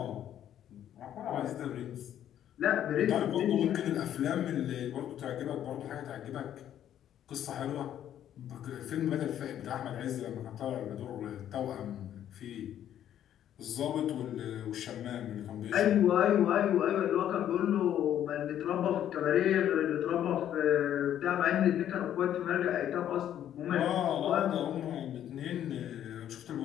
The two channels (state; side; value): quieter; right; 10.8 dB